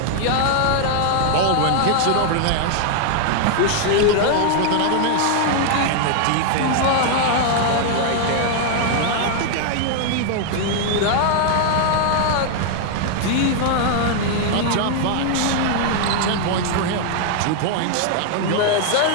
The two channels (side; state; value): both; different; correlation 0.00